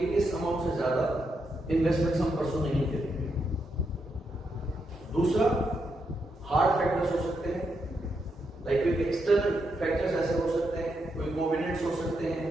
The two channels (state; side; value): normal; both; correlation 0.82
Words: इस अमाउंट से ज्यादा इन्वेस्टमेंट्स हम परसों नहीं करेंगे। दूसरा, हार्ड फैक्टर्स हो सकते हैं, लाइक कोई एक्सटर्नल फैक्टर्स ऐसे हो सकते हैं, कोई कोविनेंट्स हो सकते हैं,